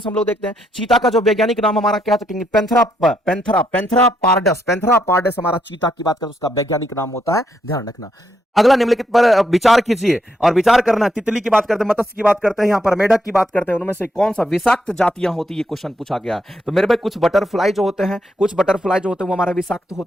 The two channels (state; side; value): normal; both; correlation 0.78